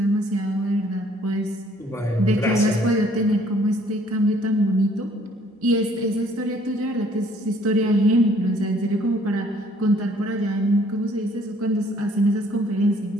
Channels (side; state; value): both; normal; correlation 0.61